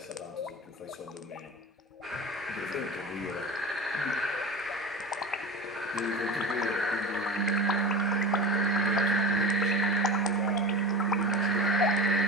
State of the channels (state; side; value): normal; both; correlation 0.31